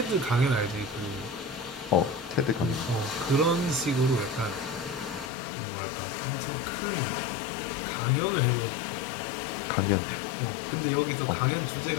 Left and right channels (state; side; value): drops out; right; at 5.3 s